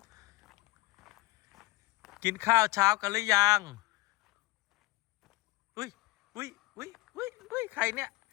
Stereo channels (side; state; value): right; quieter; 21.1 dB